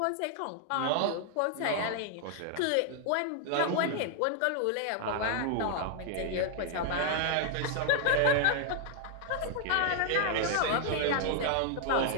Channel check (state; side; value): different; both; correlation 0.00